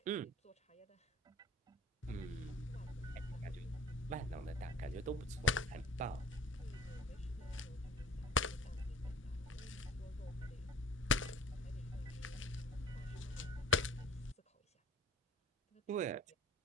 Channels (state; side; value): normal; both; correlation 0.48